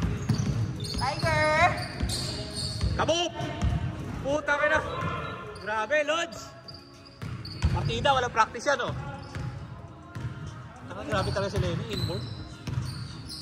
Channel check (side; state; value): both; identical; correlation 1.00